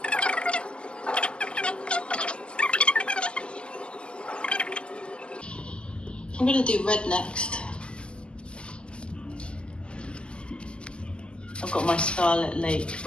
I'm going to do red next. I've got my Scarlet Lake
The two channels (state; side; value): late; right; 0.051 ms